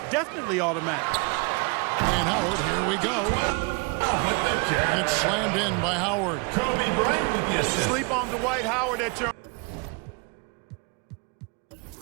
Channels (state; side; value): quieter; left; 31.6 dB